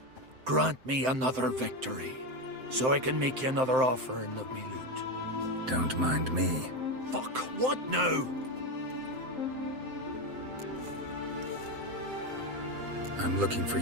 Grant me another victory, so I can make you another offering of me loot. Don't mind me. Fuck, what now? I'm looking for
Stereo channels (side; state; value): left; late; 7.7 ms